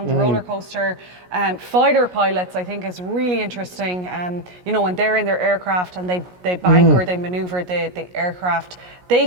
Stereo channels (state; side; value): late; left; 17 ms